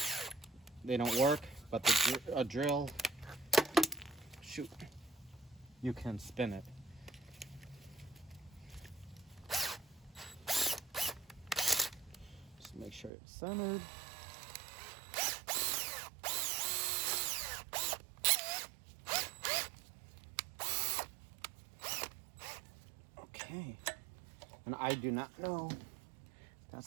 they don't work, but a drill, shoot, you can spin it. Just make sure it's centered. Okay, and I do not know if that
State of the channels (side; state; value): left; drops out; at 13.1 s